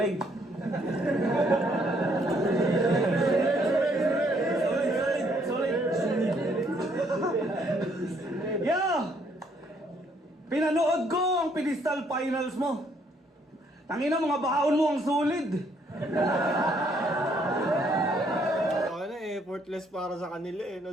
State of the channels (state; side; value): normal; both; correlation 0.68